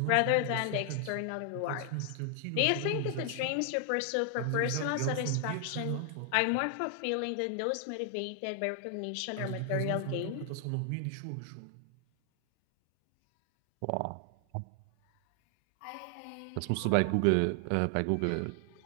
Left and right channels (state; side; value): different; both; correlation 0.00